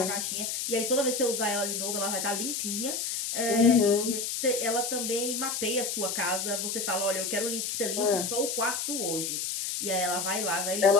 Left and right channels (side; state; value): left; noise; hiss, 2 dB below the sound